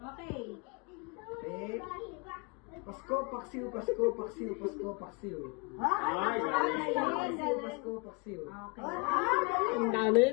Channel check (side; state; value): right; quieter; 30.9 dB